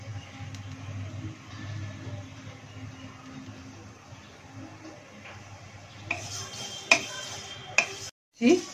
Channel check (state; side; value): identical; both; correlation 1.00